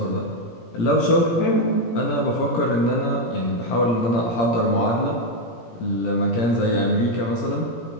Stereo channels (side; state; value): right; late; 17 ms